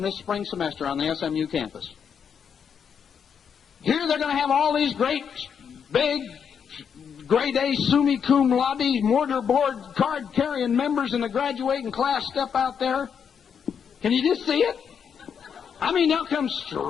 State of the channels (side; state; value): right; quieter; 7.3 dB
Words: this spring semester on the SMU campus? Here they're going to have all these great, big, grade A, summa cum laude, mortarboard, card-carrying members in the graduating class step out there. Can you just see it? I mean, they'll come